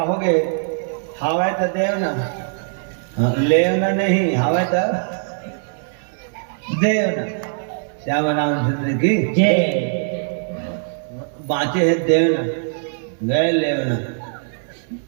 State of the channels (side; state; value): left; silent; 65 dB below the other